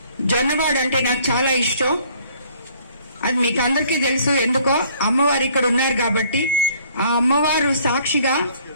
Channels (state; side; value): inverted; both; correlation -0.59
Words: జొన్నవాడు అంటే నాకు చాలా ఇష్టం. అది మీకు అందరికీ తెలుసు. ఎందుకో అమ్మవారు ఇక్కడ ఉన్నారు కాబట్టి. ఆ అమ్మవారు సాక్షిగా